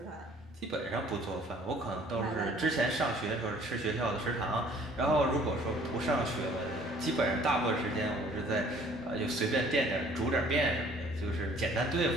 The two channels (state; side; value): normal; both; correlation 0.55